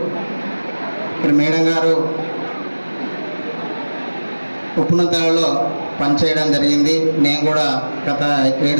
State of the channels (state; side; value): inverted; both; correlation -1.00